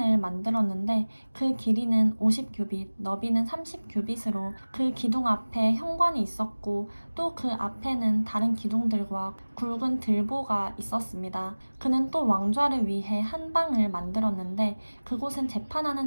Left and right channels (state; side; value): inverted; both; correlation -1.00